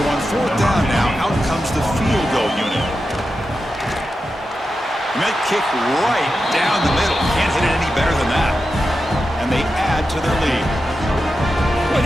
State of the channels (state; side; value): normal; both; correlation 0.90